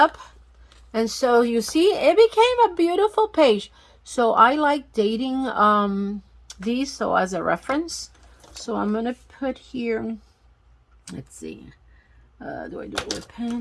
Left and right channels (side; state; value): both; identical; correlation 1.00